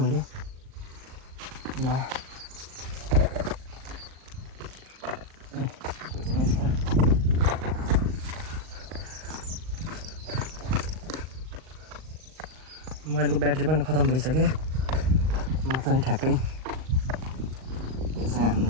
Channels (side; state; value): left; late; 38 ms